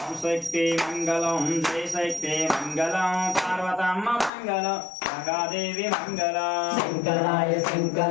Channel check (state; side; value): drops out; right; at 4.3 s